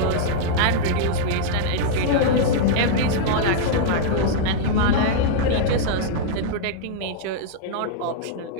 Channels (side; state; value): both; different; correlation -0.01